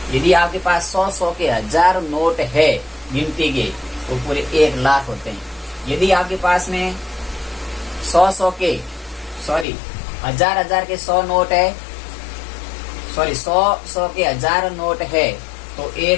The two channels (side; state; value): right; drops out; at 9.7 s